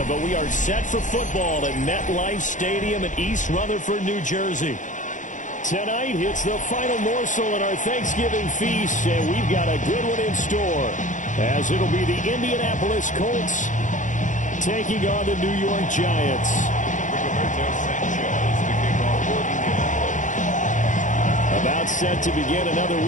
but we are set for football at MetLife Stadium in East Rutherford, New Jersey. Tonight, it's the final morsel in our Thanksgiving feast, and we've got a good one in store, as it'll be the Indianapolis Colts taking on the New York Giants. About set to begin another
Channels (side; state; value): right; late; 0.37 ms